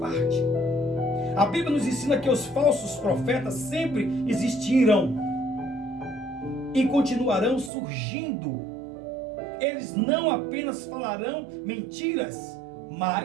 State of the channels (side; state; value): left; drops out; at 7.7 s